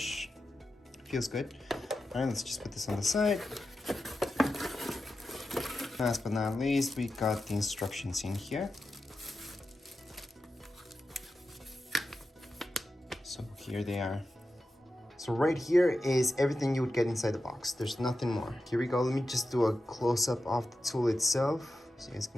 Feels good. All right, let's just put this on the side. Last but not least, we got the instructions in here. So here they are. So right here is everything you would get inside the box. There's nothing more. Here we go. Let me just do a close-up of the tool itself so you guys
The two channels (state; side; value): normal; both; correlation 0.91